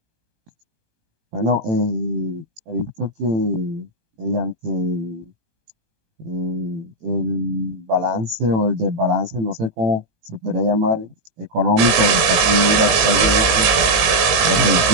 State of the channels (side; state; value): left; late; 18 ms